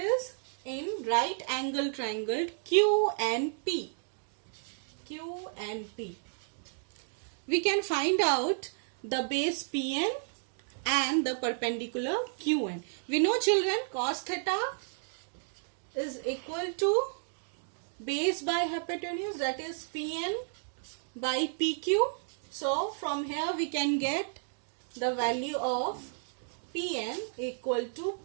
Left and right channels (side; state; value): left; silent; digital silence